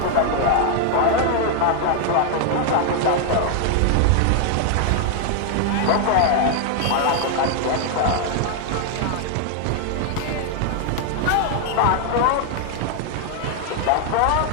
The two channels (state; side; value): different; both; correlation 0.00